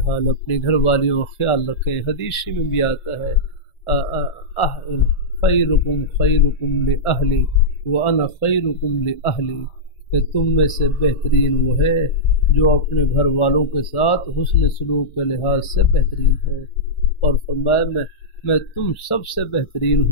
اپنی گھر والیوں کا خیال رکھیں۔ حدیث میں بھی آتا ہے خیرکم خیرکم لأہلی وانا خیرکم لأہلی، کہ تم میں سے بہترین وہ ہے جو اپنے گھر والوں کے ساتھ حسن سلوک کے لحاظ سے بہترین ہے، اور فرمایا میں تم سب سے بہترین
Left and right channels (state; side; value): late; right; 1.4 ms